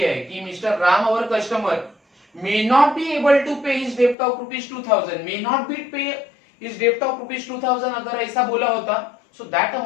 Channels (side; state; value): right; drops out; at 4.2 s